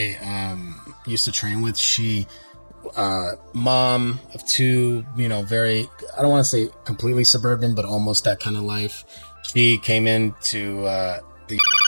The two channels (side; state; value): both; inverted; correlation -1.00